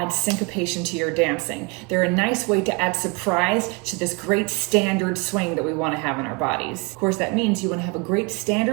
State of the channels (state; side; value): quieter; left; 29.0 dB